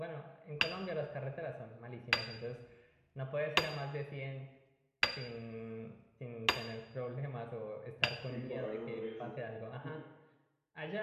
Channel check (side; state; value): both; identical; correlation 1.00